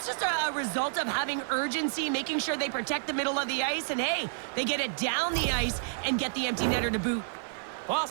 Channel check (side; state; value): left; silent; 58 dB below the other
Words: just a result of having urgency, making sure they protect the middle of the ice, and hey, they get it down the ice and get the empty netter to boot.